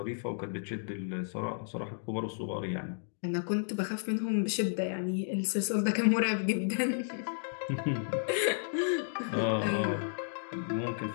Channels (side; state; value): right; silent; digital silence